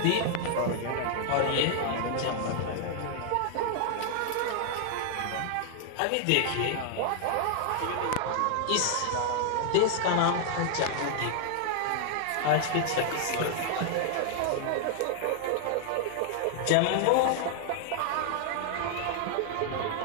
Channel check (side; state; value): both; different; correlation 0.00